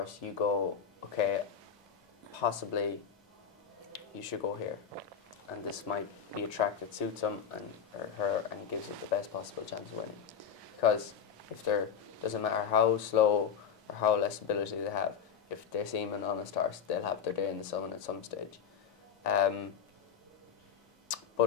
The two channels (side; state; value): right; quieter; 7.6 dB